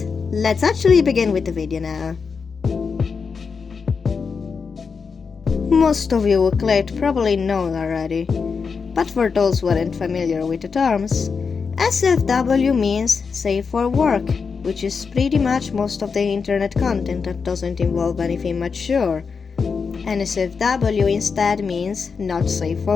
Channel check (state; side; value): quieter; right; 5.4 dB